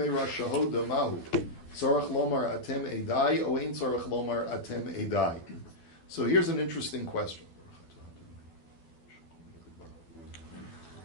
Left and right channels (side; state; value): right; late; 12 ms